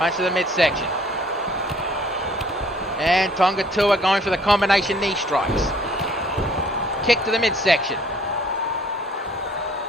to the midsection. And Tonga Tour going for the combination knee strikes. Kick to the midsection.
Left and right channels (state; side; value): normal; both; correlation 0.58